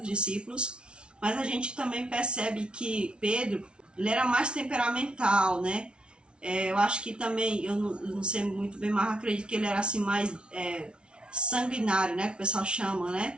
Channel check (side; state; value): left; late; 0.057 ms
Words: discípulos, mas a gente também percebe que Pedro, ele era mais temperamental, eu acho que também, eu não sei muito bem, mas acredito que ele era assim mais sanguinário, que o pessoal chama,